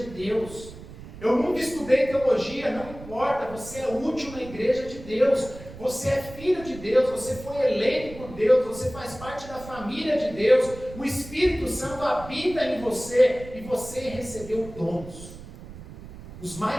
Deus. Eu nunca estudei teologia, não importa, você é útil na igreja de Deus. Você é filho de Deus, você foi eleito por Deus, você faz parte da família de Deus. O Espírito Santo habita em você e você recebeu dons. Os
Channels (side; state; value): right; noise; rumble, 15 dB below the sound